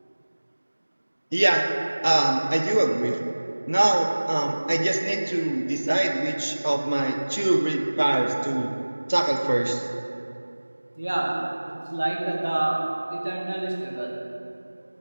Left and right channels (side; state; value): both; inverted; correlation -1.00